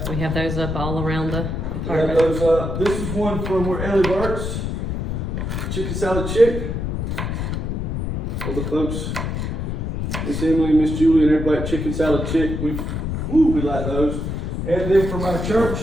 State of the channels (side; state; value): left; noise; rumble, 2 dB below the sound